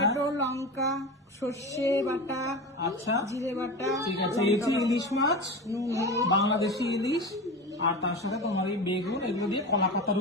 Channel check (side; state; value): both; normal; correlation 0.27